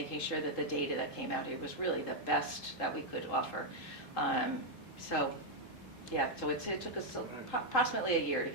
sure that the data that came out here was really the best that we could offer. So it took us approximately a year to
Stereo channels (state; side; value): normal; both; correlation 0.00